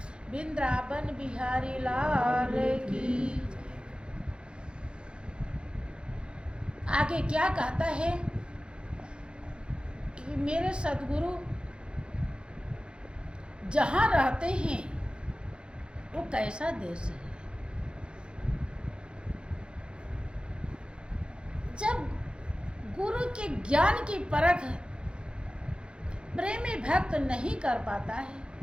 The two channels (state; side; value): late; left; 0.054 ms